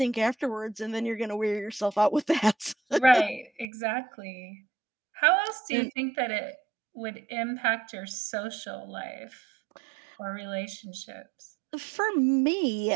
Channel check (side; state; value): left; drops out; at 3.7 s